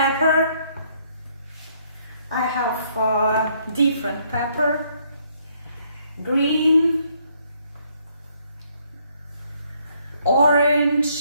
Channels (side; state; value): both; inverted; correlation -0.68